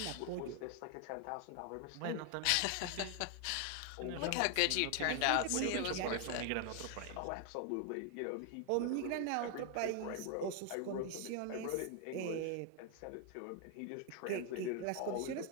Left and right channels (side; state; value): both; different; correlation 0.00